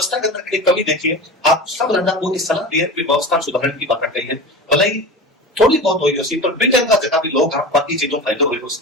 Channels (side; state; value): both; normal; correlation 0.30